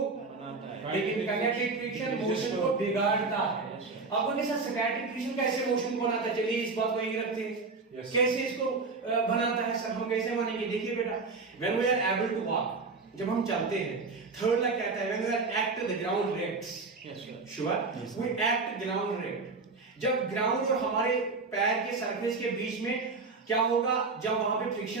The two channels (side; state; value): left; quieter; 4.1 dB